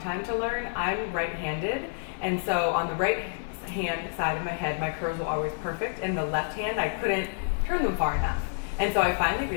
to learn. I'm right-handed, and so on the right hand side of my head, my curls were always perfect, and the left hand, I couldn't turn them far enough. And so I finally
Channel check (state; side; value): silent; right; 59 dB below the other